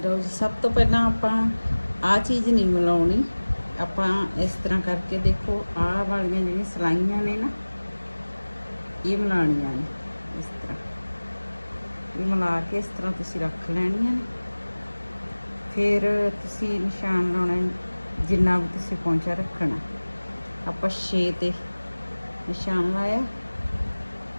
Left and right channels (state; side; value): inverted; both; correlation -1.00